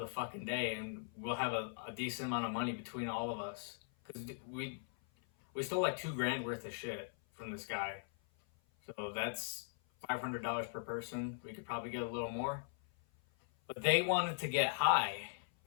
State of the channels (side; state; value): right; silent; 51 dB below the other